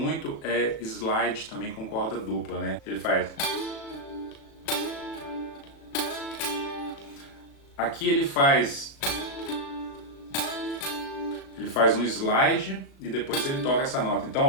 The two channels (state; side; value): late; right; 36 ms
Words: é slide também com corda dupla, né? Ele faz... aqui ele faz um slide e depois ele toca essa nota. Então,